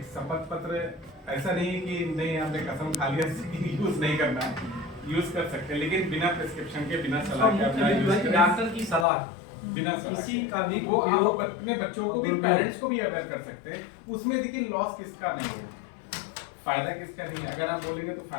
शपथ पत्र, ऐसा नहीं है कि नहीं आपने कसम खा लिया कि यूज़ नहीं करना है, यूज़ कर सकते हैं, लेकिन बिना प्रिस्क्रिप्शन के, बिना सलाह के अपना यूज़ करें, डॉक्टर की सलाह बिना सलाह किसी के। का भी वो आप अपने बच्चों को भी, पेरेंट्स को भी अवेयर कर सकते हैं। उसमें देखिए लॉस किसका नहीं है, फायदा किसका नहीं है। अगर आप बोलेंगे तो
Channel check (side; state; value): right; drops out; at 9.1 s